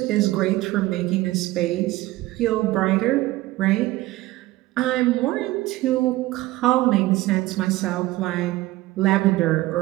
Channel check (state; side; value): quieter; left; 17.9 dB